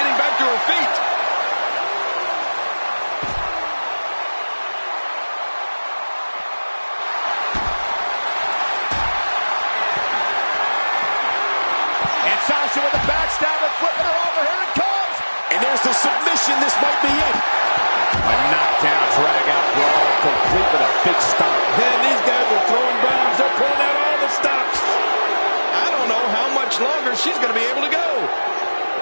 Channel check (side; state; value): both; inverted; correlation -1.00